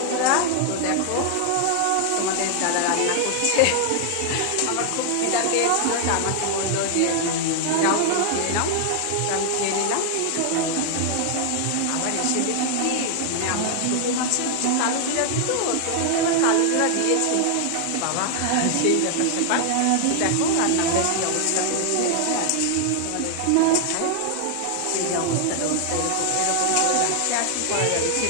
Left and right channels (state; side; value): different; both; correlation 0.00